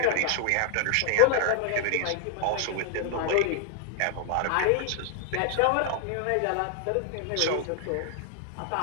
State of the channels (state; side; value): different; both; correlation 0.00